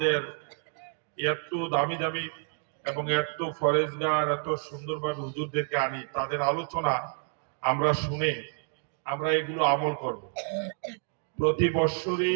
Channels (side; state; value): left; silent; 56 dB below the other